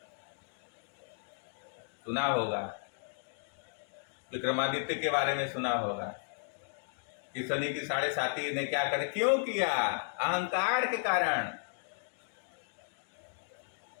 सुना होगा, विक्रमादित्य के बारे में सुना होगा कि शनि की 7.5 ने क्या कर, क्यों किया? अहंकार के कारण।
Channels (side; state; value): right; silent; digital silence